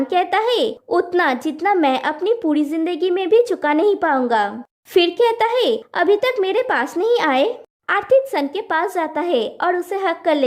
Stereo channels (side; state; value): both; identical; correlation 1.00